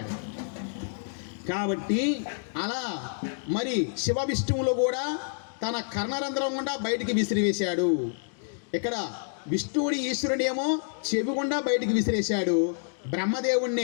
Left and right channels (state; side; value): silent; right; digital silence